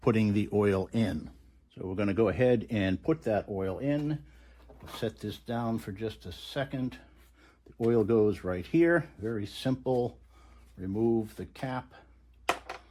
putting the oil in. So we're going to go ahead and put that oil in. I'll set this down for just a second. The oil goes right here. Very simple. Remove the cap.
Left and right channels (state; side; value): identical; both; correlation 1.00